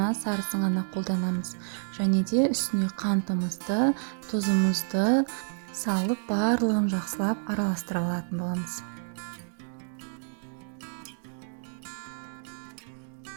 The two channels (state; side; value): silent; left; digital silence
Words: сарысын ғана қолданамыз. Және де үстіне қантымызды, тұзымызды салып, барлығын жақсылап араластыра алатын боламыз.